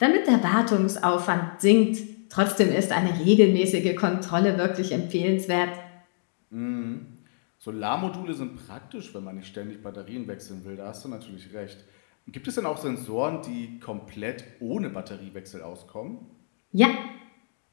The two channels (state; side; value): silent; right; digital silence